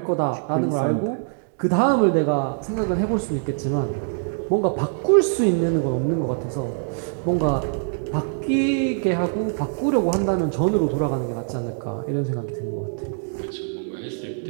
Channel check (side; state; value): left; silent; digital silence